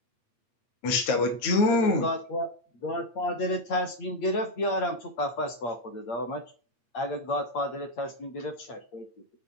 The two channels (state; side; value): late; right; 8.6 ms